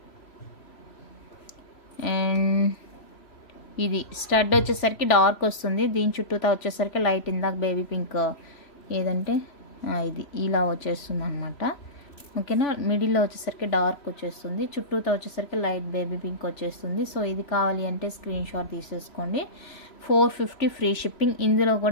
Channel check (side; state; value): right; late; 3.1 ms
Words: And ఇది స్టడ్ వచ్చేసరికి డార్క్ వస్తుంది. దీని చుట్టూతా వచ్చేసరికి లైట్, ఇందాక బేబీ పింక్ ఏదంటే ఇది ఇలా వచ్చేస్తుంది అనమాట. ఓకేనా. మిడిల్లో వచ్చేసరికి డార్క్ వచ్చేస్తుంది. చుట్టూతా వచ్చేసరికి లైట్ బేబీ పింక్ వచ్చేస్తుంది. సో ఇది కావాలి అంటే స్క్రీన్ షాట్ తీసేసుకోండి. 450 ఫ్రీ షిప్పింగ్. ఇందులో